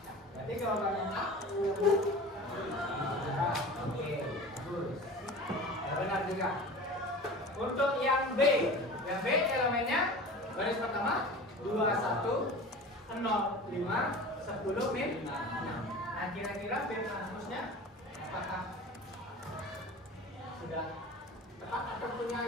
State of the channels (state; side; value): normal; both; correlation 0.37